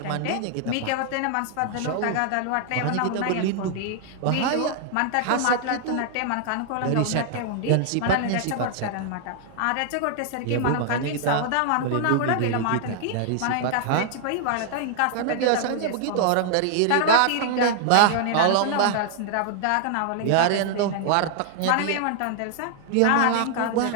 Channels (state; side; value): different; both; correlation 0.00